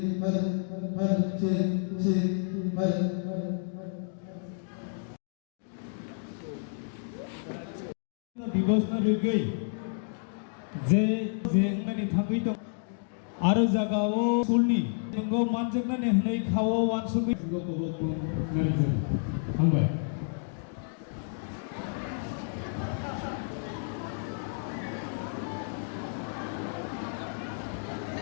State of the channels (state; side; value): silent; right; digital silence